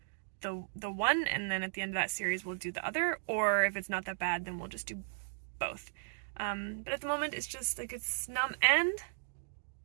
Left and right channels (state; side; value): silent; left; digital silence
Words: the one, and then at the end of that series we'll do the other, or if it's not that bad, then we'll just do both. But at the moment it's just like it's numb, and